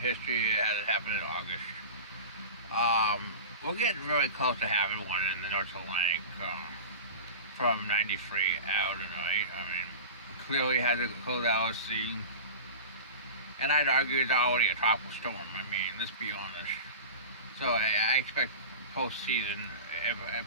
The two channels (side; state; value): both; inverted; correlation -0.33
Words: it hasn't happened in August. We're getting really close to having one in the North Atlantic from 93 out tonight. I mean, clearly had to close LSC. And I'd argue it's already a tropical storm. I mean, let's be honest. So I expect postseason it